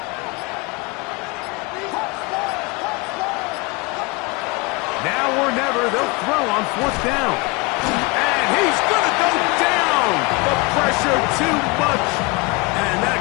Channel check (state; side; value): quieter; right; 27.0 dB